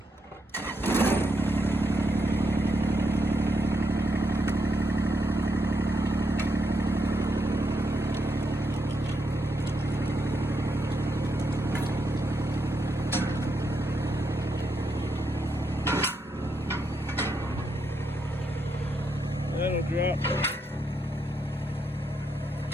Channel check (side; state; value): both; normal; correlation 0.80